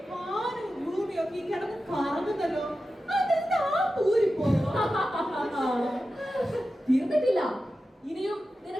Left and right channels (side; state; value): both; normal; correlation 0.92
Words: വാനും ഭൂമിയൊക്കെ ഈ കിടന്ന് കറങ്ങുന്നല്ലോ. അതെന്താ പൂരിപ്പോ? തീർന്നിട്ടില്ല. ഇനിയും